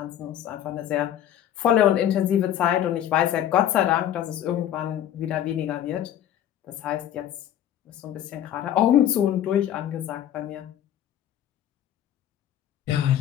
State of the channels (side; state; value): right; quieter; 10.9 dB